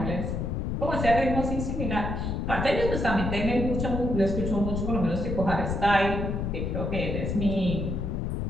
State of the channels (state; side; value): noise; left; rumble, 2 dB below the sound